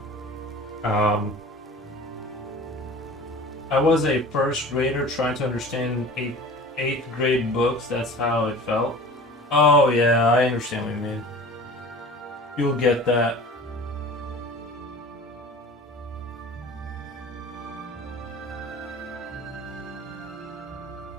Um, I was a first grader trying to understand eighth grade books. That's how it felt. Oh yeah, I understand what you mean. You'll get that.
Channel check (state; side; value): normal; both; correlation 0.40